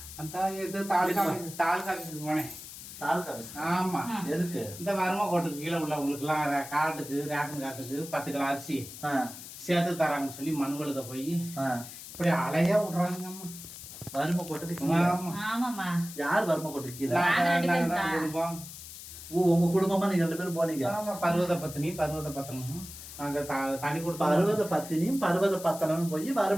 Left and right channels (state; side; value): noise; left; hiss, 13 dB below the sound